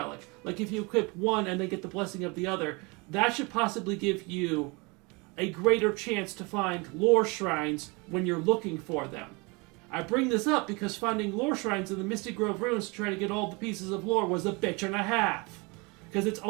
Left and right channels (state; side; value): quieter; left; 28.0 dB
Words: Like if you equip one and then get the blessing of the other, that should possibly give you a greater chance to find lore shrines when you're looking for them. I bring this up because finding lore shrines in the Misty Grove Ruins to try to get all the pieces of lore was a bitch and a half. Because it's